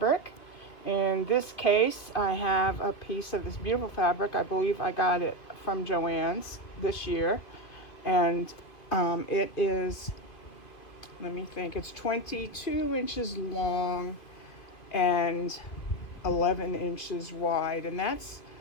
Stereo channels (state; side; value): late; right; 2.6 ms